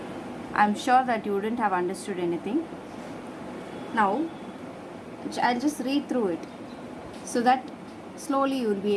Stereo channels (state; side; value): identical; both; correlation 1.00